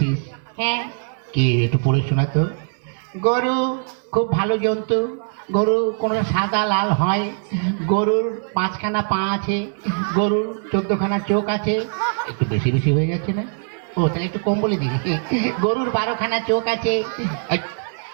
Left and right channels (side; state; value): left; silent; 65 dB below the other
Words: হ্যাঁ। কি একটু পড়ে শোনা তো। গরু খুব ভালো জন্তু। গরু কোনো সাদা লাল হয়। গরুর 5খানা পা আছে। গরুর 14খানা চোখ আছে। একটু বেশি বেশি হয়ে যাচ্ছে না? ও তাহলে একটু কম বলে দিবি। গরুর 12খানা চোখ আছে।